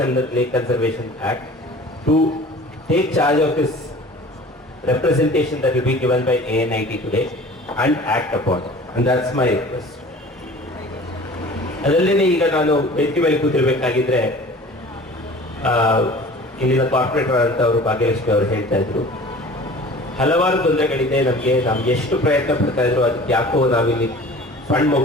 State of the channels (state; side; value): normal; both; correlation 0.44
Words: under lake conservation act to take charge of this representation that will be given by ANIT today and act upon it, and that's my request. ಅದಲ್ಲದೆ ಈಗ ನಾನು ವೇದಿಕೆ ಮೇಲೆ ಕೂತಿರ್ಬೇಕಾಗಿದ್ರೆ ಇಲ್ಲಿನ corporate ಅಂತ ಅವರು ಭಾಗ್ಯಲಕ್ಷ್ಮಿ ಅವರು ಹೇಳ್ತಾ ಇದ್ರು, ಹಲವಾರು ತೊಂದರೆಗಳಿದೆ ನಮ್ಗೆ ಎಷ್ಟು ಪ್ರಯತ್ನ ಪಡ್ತಾ ಇದ್ರು ಅದಕ್ಕೆ ಯಾಕೋ ನಾವಿಲ್ಲಿ ಫಂಡ್